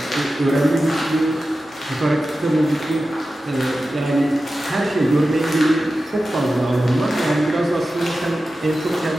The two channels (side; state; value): both; normal; correlation 0.93